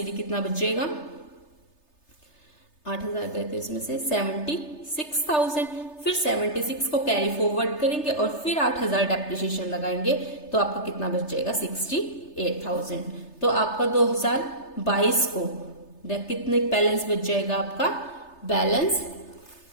कितना बच जाएगा, 8,000 गए थे इसमें से 76,000, फिर 76 को कैरी फॉरवर्ड करेंगे और फिर 8,000 डेप्रिसिएशन लगाएंगे तो आपका कितना बच जाएगा, 68,000। तो आपका 2022 को कितने बैलेंस बच जाएगा, आपका बैलेंस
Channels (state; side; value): late; right; 3.3 ms